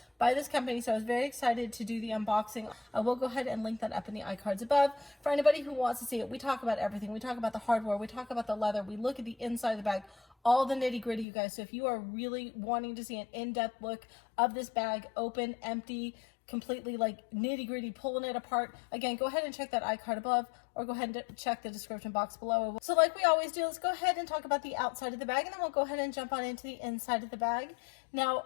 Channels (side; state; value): right; drops out; at 11.2 s